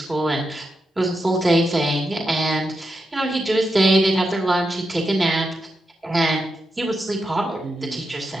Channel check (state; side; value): normal; both; correlation 0.86